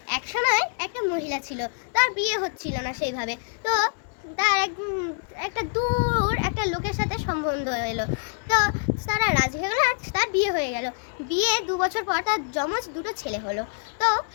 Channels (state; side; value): silent; right; digital silence